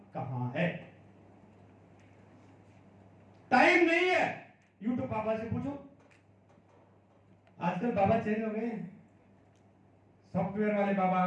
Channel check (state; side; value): identical; both; correlation 1.00